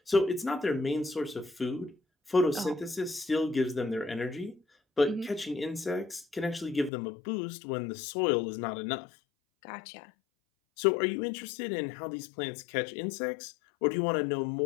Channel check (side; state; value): right; drops out; at 6.9 s